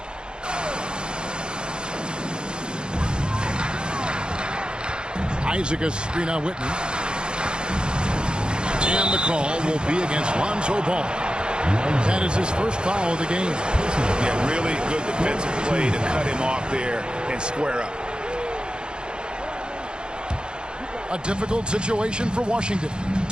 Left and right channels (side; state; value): left; late; 0.049 ms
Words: Isaac a screen on Whitney. And the call will be against Lonzo Ball. That is his first foul of the game. Yeah, really good defensive play to cut him off there and square up. A difficult situation for Washington.